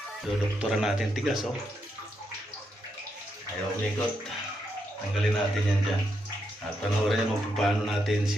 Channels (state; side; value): normal; both; correlation 0.81